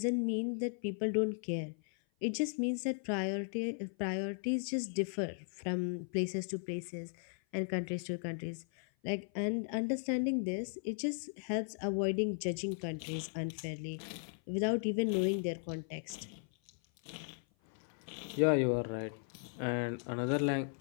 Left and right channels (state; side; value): silent; right; 53 dB below the other